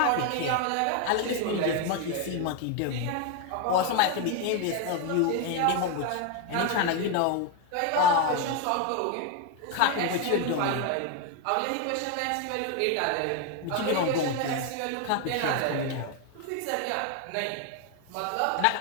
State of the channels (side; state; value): both; different; correlation 0.01